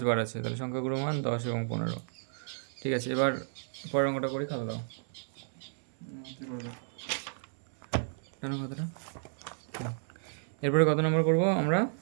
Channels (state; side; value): silent; left; 56 dB below the other